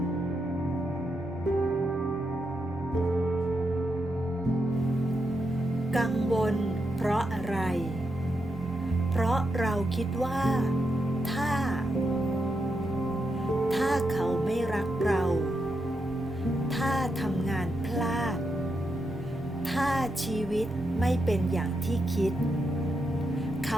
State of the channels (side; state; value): both; normal; correlation 0.84